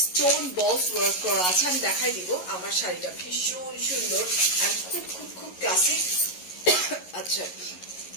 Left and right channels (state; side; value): late; right; 11 ms